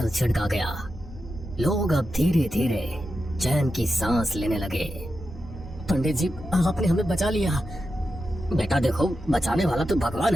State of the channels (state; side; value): noise; right; hum, 19 dB below the sound